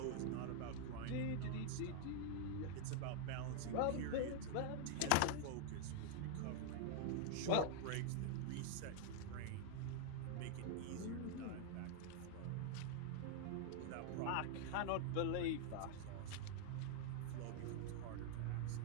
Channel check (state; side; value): different; both; correlation -0.01